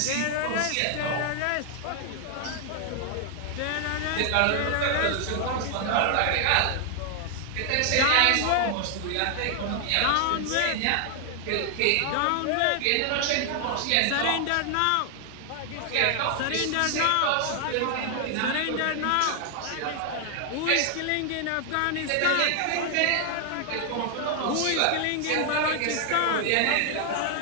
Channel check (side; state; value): both; different; correlation 0.00